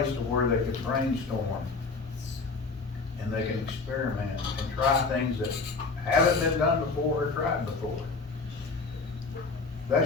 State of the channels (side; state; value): right; quieter; 4.2 dB